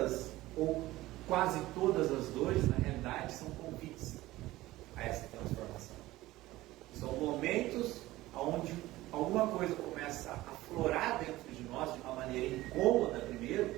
ou quase todas as dores, na realidade, são convites a essa transformação. São momentos onde alguma coisa começa a aflorar dentro de nós de uma maneira incômoda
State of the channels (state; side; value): quieter; left; 17.4 dB